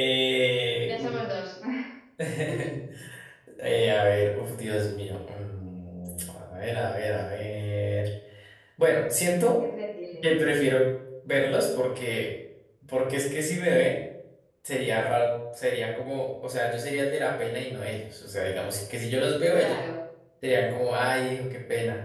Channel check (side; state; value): both; identical; correlation 1.00